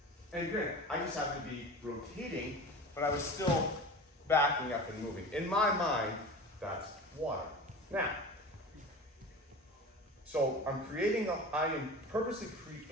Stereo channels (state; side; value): normal; both; correlation 0.34